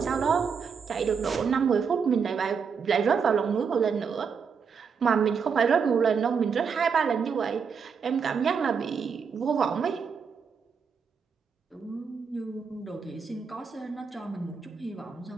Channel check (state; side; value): quieter; left; 6.1 dB